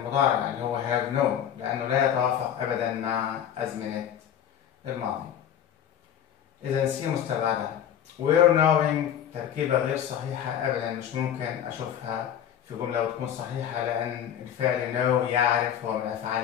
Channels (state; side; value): quieter; right; 9.7 dB